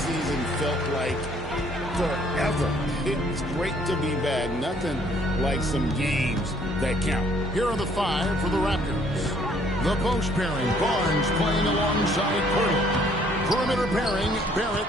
felt like forever. It's great to be back. Nothing like some games that count. Here are the five for the Raptors. The post pairing, Barnes playing alongside Pirtle. Perimeter pairing, Barrett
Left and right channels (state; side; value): normal; both; correlation 0.62